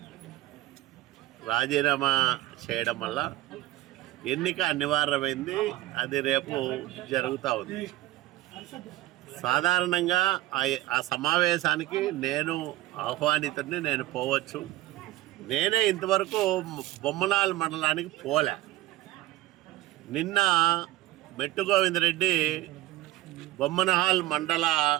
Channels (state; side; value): quieter; left; 16.5 dB